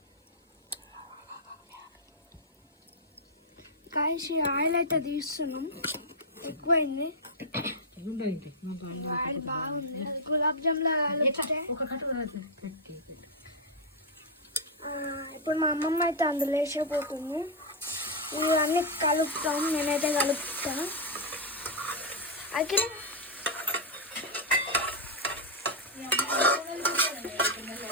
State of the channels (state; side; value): normal; both; correlation -0.03